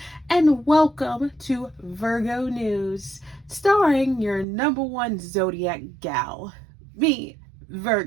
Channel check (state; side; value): drops out; left; at 4.5 s